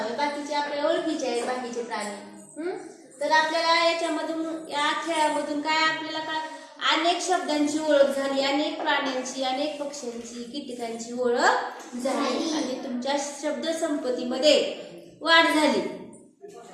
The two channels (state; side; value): identical; both; correlation 1.00